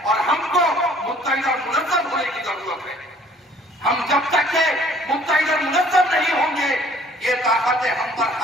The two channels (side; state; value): both; normal; correlation 0.56